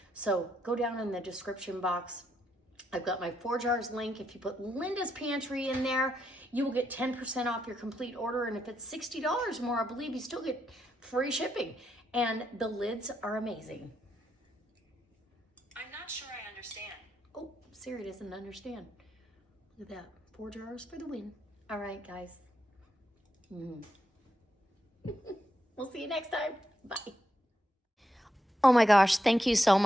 So go down in the description box. I've got my 4 jars link. If you put Linda's Pantry in there, you will get 10% off your complete order. And if it's $60 more, I believe you still get free shipping. And the lids are amazing. I'm not sure I understand. Oh, Siri doesn't understand. Look at that. 4 jars for the win. All right, guys. We'll see you next time. Bye. Oh my gosh, thank you so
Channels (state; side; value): normal; both; correlation 0.81